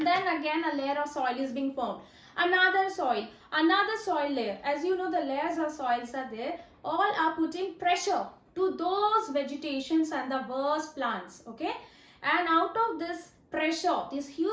then again a layer of soil is being formed, another soil layer. As you know, the layers of soils are there, all are putting pressure to those vegetations and the worst plants, okay? And out of this pressure, this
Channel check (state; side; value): identical; both; correlation 1.00